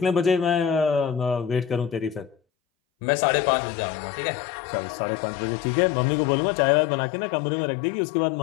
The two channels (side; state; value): right; drops out; at 2.4 s